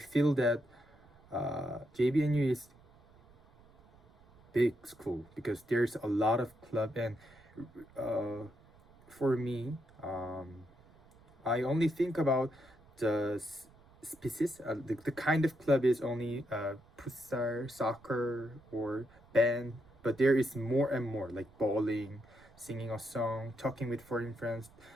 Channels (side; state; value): right; noise; rumble, 27 dB below the sound